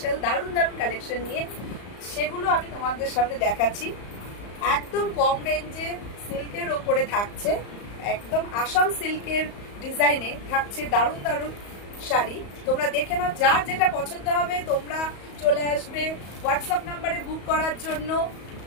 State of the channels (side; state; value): right; late; 34 ms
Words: দারুণ দারুণ কালেকশন নিয়ে। সেগুলো আমি তোমাদের সামনে দেখাচ্ছি। একদম কম রেঞ্জে সিল্কের ওপরে থাকছে, একদম আসাম সিল্কের ডিজাইনে থাকছে দারুণ দারুণ শাড়ি। তোমরা দেখে নাও, যার যেটা পছন্দ হবে তোমরা চলে আসবে হোয়াটসঅ্যাপ নাম্বারে বুক করার জন্য